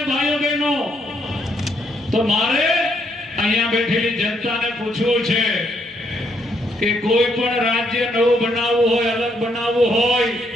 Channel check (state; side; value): normal; both; correlation 0.74